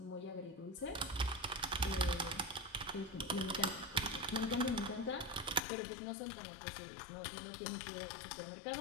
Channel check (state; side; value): drops out; right; at 5.6 s